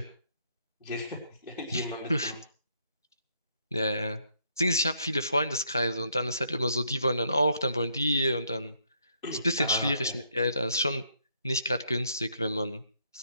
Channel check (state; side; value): inverted; both; correlation -0.72